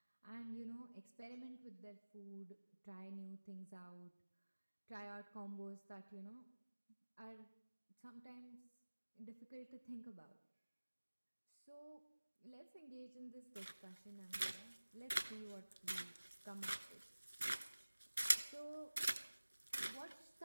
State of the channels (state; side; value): inverted; both; correlation -1.00